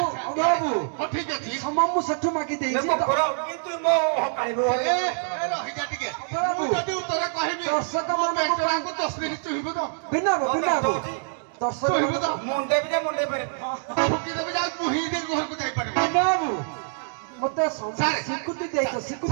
ଅଭାବୁ ହଁ ଠିକ ଅଛି ସମୟ ମୁଁ ସେଠୁ ମାଗି ଦେଇଛି ଦେଖ ପୁରା କିନ୍ତୁ ମୋ ହକାଳିବ ଏ ରହିଯା ଟିକେ ମୁଁ ଯଦି ଉତ୍ତର କହିବି ଦର୍ଶକ ମୋ ମାନଙ୍କୁ ପେଟଟାକୁ ତସଲି ଚୁହିବୁ ତ ବିନା ଦର୍ଶକ ମୁଣ୍ଡେ ବି ଯେ ମୁଣ୍ଡେ ପାରେ ଠୁକି ଦେବି ଯାଉ ଚୁହି ଦେଇ ଘରକୁ ଯାଇପାରିବୁ ବିନାବୁ ମତେ ସାର୍। ସ୍ୱୀକୃତି ଦେଇଛ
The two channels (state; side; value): silent; left; digital silence